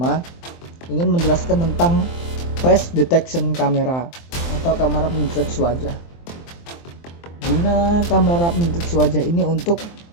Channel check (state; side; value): late; right; 23 ms